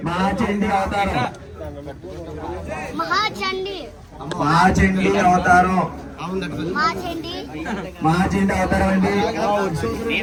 మహాచండీ అవతారం. మహాచండి మహాచండీ అవతారం. మహాచండి మహాచండీ అవతారం అండి.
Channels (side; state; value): both; identical; correlation 1.00